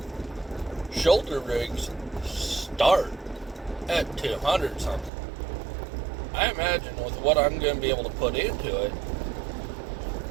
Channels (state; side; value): drops out; left; at 5.1 s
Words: shoulder rigs start at 200 something. I imagine with what I'm going to be able to put into it,